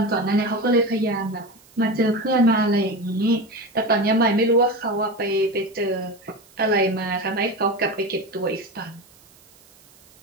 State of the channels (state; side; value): noise; right; hiss, 28 dB below the sound